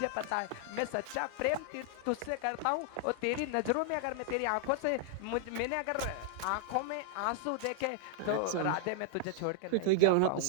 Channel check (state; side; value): different; both; correlation -0.01